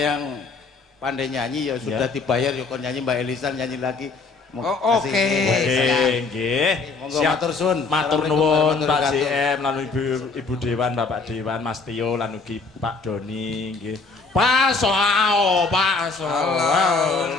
pandai nyanyi, ya sudah dibayar, ya kon nyanyi Mbak Elisa nyanyi lagi. Oh, oke. Nggih, nggih. Monggo matur suwun. Matur Assalamualaikum nuwun warahmatullahi Pak wabarakatuh. JM lan Ibu Dewan, Bapak Dewan, Mas Tio lan ugi Pak Doni nggih. Allahumma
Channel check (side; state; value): right; quieter; 4.1 dB